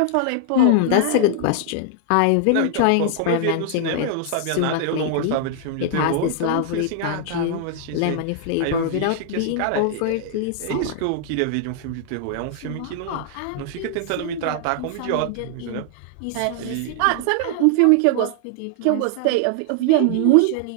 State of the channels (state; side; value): different; both; correlation 0.00